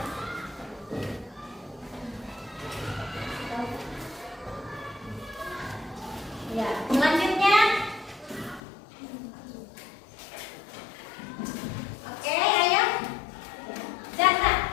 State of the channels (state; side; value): drops out; right; at 8.6 s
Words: Ya, selanjutnya. Oke, ayo. Jasa.